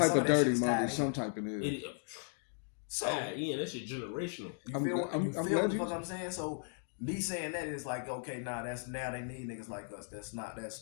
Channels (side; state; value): right; silent; 54 dB below the other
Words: of dirty money, tied some in. type of it. So, yeah, that shit generational. You feel what the fuck I'm saying? So me saying that is like, okay, now they need niggas like us. That's